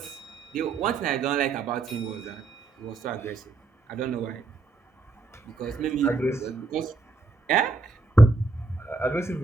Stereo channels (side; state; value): left; quieter; 3.6 dB